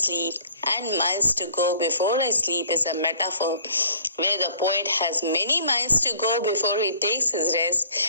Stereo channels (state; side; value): inverted; both; correlation -0.54